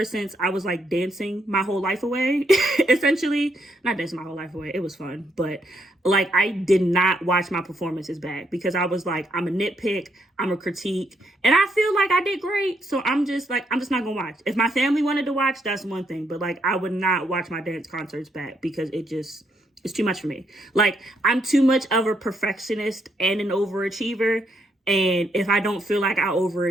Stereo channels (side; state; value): both; normal; correlation 0.75